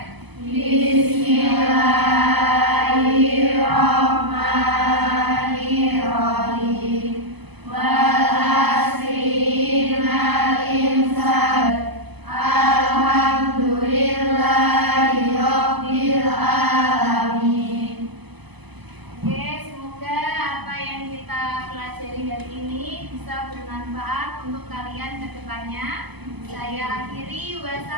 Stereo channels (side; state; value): left; late; 0.99 ms